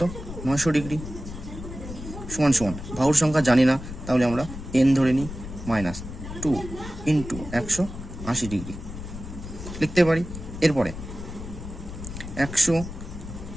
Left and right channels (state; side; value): noise; left; rumble, 10 dB below the sound